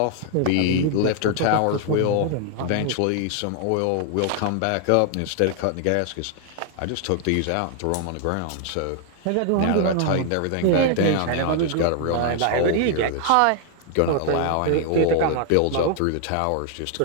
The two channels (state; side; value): different; both; correlation 0.00